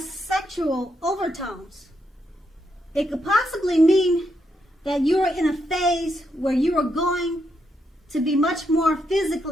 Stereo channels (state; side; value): normal; both; correlation 0.80